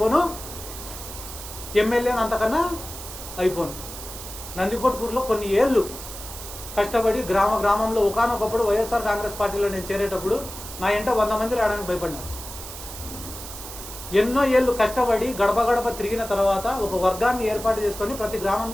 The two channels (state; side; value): noise; right; hiss, 11 dB below the sound